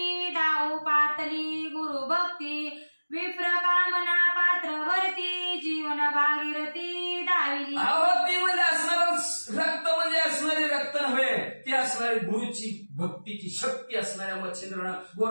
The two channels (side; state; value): both; inverted; correlation -1.00